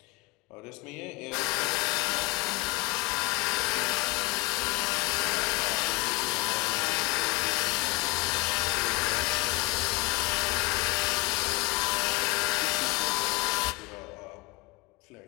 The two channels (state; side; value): quieter; right; 25.0 dB